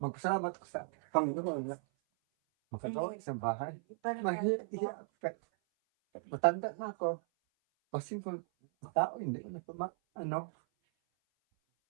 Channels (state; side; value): silent; left; 53 dB below the other